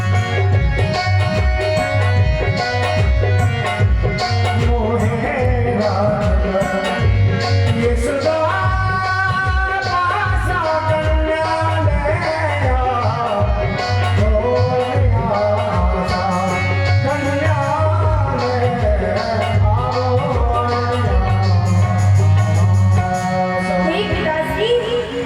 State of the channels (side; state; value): both; identical; correlation 1.00